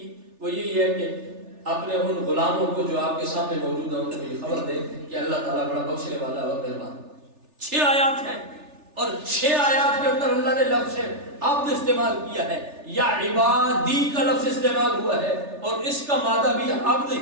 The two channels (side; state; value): left; late; 3.4 ms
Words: وہ یہی ہے کہ اپنے ان غلاموں کو جو آپ کے سامنے موجود ہیں ان کو یہ خبر دے کہ اللہ تعالیٰ بڑا بخشنے والا اور مہربان۔ 6 آیات ہیں اور 6 آیات کے اندر اللہ نے لفظ عبد استعمال کیا ہے، یا عبادی کا لفظ استعمال ہوا ہے، اور اس کا مادہ بھی عبد